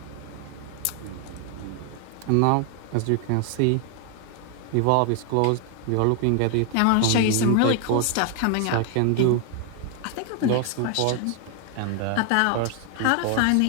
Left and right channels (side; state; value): both; different; correlation 0.00